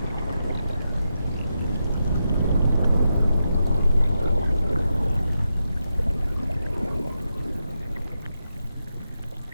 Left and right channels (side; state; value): both; inverted; correlation -0.86